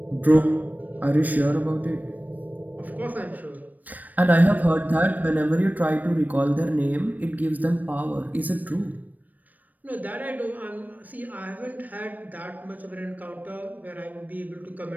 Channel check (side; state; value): left; late; 0.082 ms